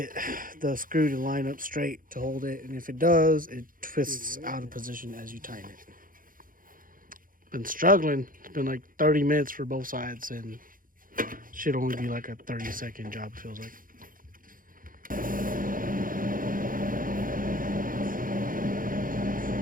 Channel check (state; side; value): late; left; 0.40 ms